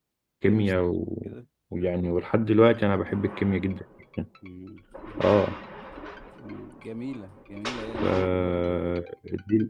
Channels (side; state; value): both; identical; correlation 1.00